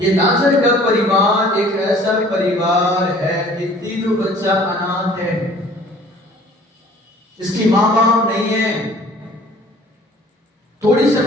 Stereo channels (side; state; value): both; normal; correlation 0.51